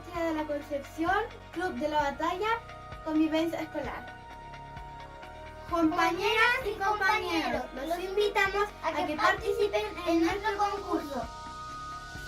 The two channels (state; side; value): identical; both; correlation 1.00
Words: de la Concepción, Club de la Batalla, Convivencia Escolar. Compañeras y compañeros, los invitamos a que participen en nuestro concurso.